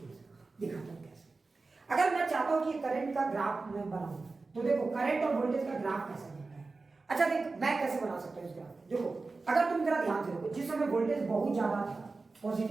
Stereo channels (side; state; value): left; quieter; 3.8 dB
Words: दिखाता हूँ कैसे। अगर मैं चाहता हूँ कि करंट का ग्राफ मैं बनाऊं, तो देखो करंट और वोल्टेज का ग्राफ कैसे बनता है। अच्छा देख, मैं कैसे बना सकता हूँ इस ग्राफ। देखो, अगर तुम जरा ध्यान से देखो, जिस समय वोल्टेज बहुत ज्यादा था